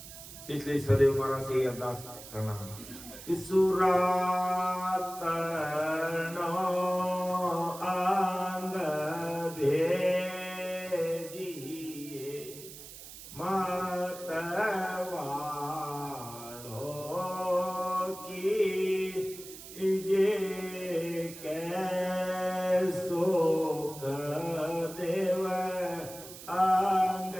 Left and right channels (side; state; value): right; noise; hiss, 14 dB below the sound